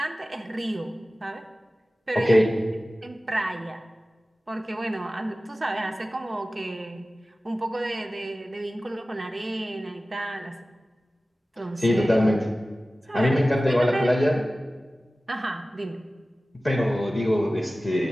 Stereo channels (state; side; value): normal; both; correlation 0.96